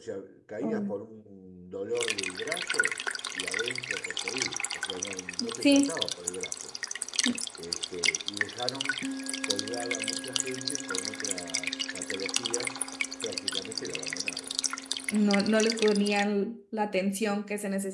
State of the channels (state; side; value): identical; both; correlation 1.00